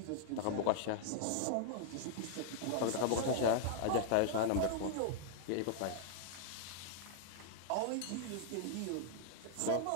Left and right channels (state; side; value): different; both; correlation -0.01